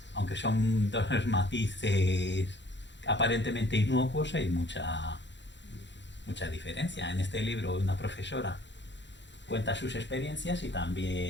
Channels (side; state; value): right; late; 0.52 ms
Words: Aunque son dos matices aparentemente inocuos, hay mucha diferencia. En este libro una profesora cuenta sus experiencias y